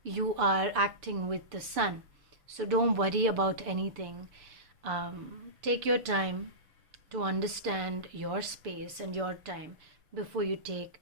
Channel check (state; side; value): late; left; 6.9 ms